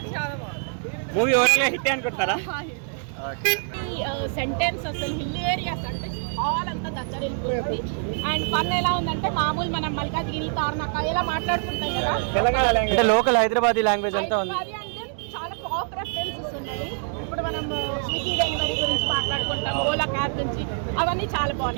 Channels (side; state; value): left; silent; 62 dB below the other